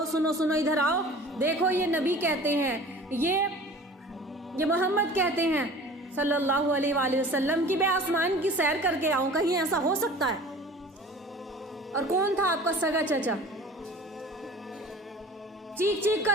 سنو سنو، ادھر آؤ، دیکھو یہ نبی کہتے ہیں، یہ محمد کہتے ہیں صلی اللہ علیہ وآلہ وسلم کہ میں آسمان کی سیر کر کے آؤں، کہیں ایسا ہو سکتا ہے؟ اور کون تھا آپ کا سگا چچا؟ چیخ چیخ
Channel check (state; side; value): normal; both; correlation 0.43